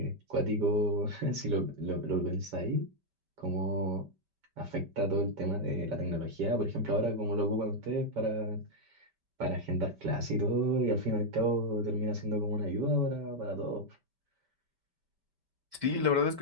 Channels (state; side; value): late; left; 5.1 ms